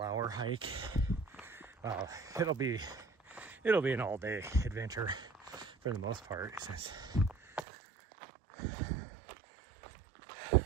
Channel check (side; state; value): left; drops out; at 7.7 s